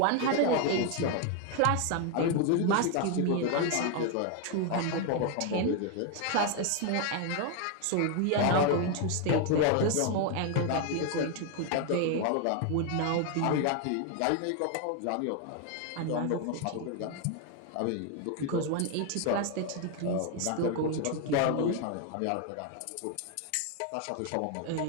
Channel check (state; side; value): different; both; correlation 0.01